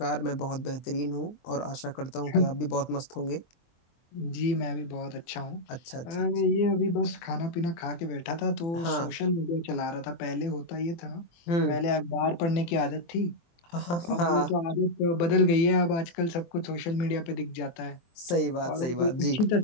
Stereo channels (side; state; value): right; late; 23 ms